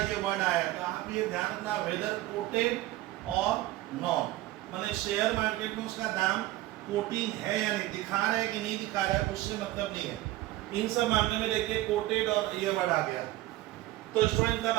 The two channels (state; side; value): quieter; left; 16.7 dB